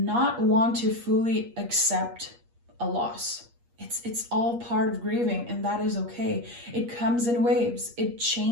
want to fully accept a loss. It's all part of grieving, and that is okay. It comes in waves, it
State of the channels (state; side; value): late; left; 8.4 ms